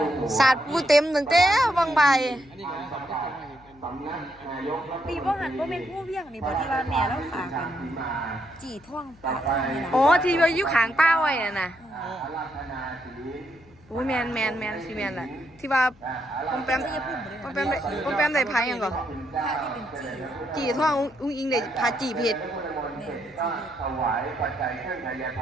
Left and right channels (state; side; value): noise; left; hum, 27 dB below the sound